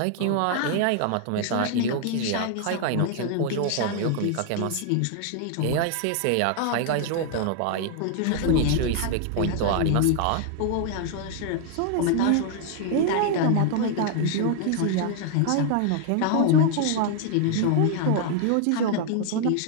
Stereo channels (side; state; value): both; different; correlation 0.00